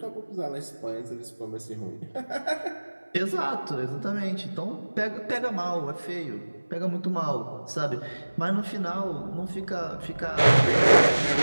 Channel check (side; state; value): both; inverted; correlation -1.00